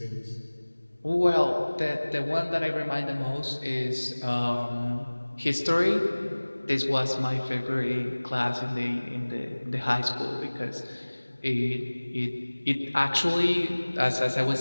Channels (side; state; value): both; inverted; correlation -1.00